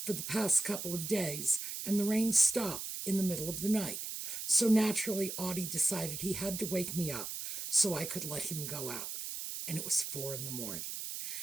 for the past couple of days, and the rain stopped in the middle of the night. So naturally, Audie decided he had to wake me up so I could let him go out. And it was 4 a.m.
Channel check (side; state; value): right; noise; hiss, 5 dB below the sound